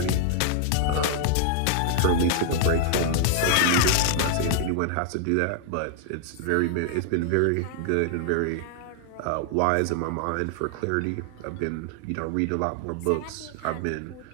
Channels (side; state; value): both; different; correlation 0.00